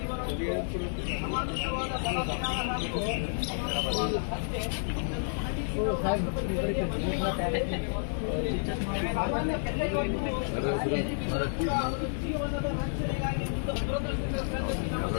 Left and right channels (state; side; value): silent; right; digital silence